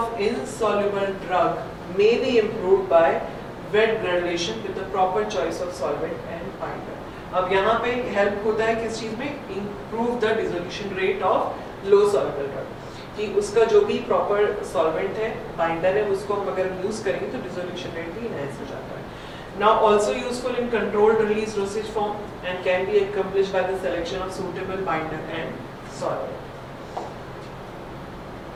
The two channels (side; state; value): both; identical; correlation 1.00